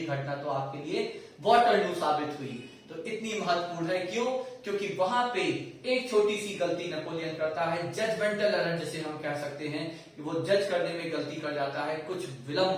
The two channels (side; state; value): both; identical; correlation 1.00